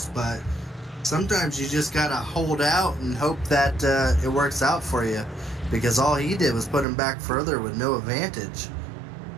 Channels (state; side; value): drops out; left; at 6.9 s